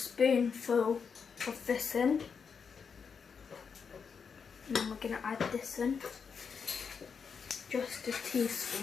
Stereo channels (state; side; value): quieter; right; 6.1 dB